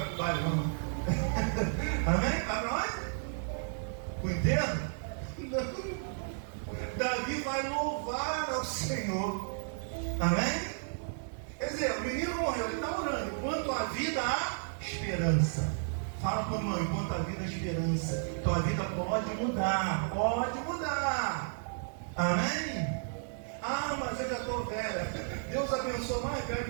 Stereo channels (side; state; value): left; silent; digital silence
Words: para o baile, não? Amém? Vai para onde? O enterro? Não. Davi vai louvar ao Senhor, amém? Quer dizer, o menino morreu, ele está orando. Quanto à vida, há esperança. Fala para o irmão, enquanto a vida é esperança, tua vida pode mudar, pode mudar. Amém? Ah, mas eu já estou velha. Deus abençoa mais velho